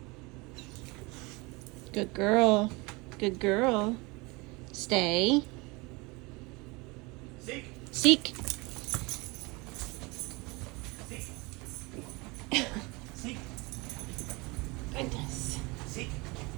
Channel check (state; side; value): quieter; left; 25.9 dB